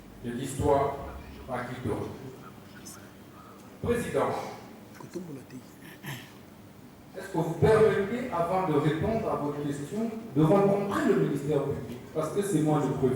De l'histoire par qui de Président, est-ce que vous permettez, avant de répondre à votre question, de rencontrer le ministère public? Parce que c'est moi le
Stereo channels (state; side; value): identical; both; correlation 1.00